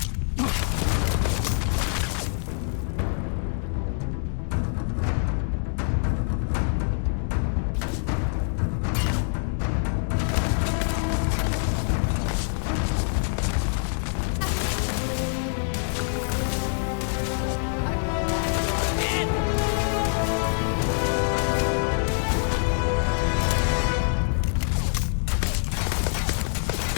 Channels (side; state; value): right; silent; digital silence